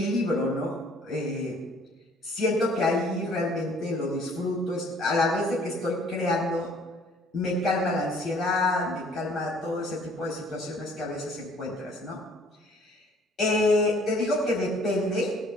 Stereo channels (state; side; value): normal; both; correlation 0.57